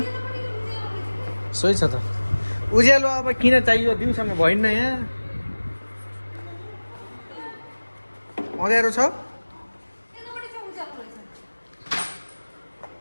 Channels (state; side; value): inverted; both; correlation -1.00